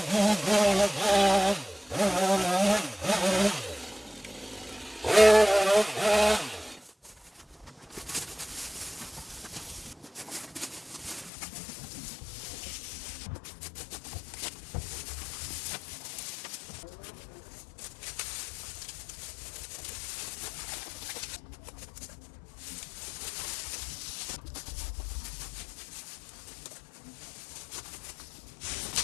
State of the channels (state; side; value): drops out; right; at 11.3 s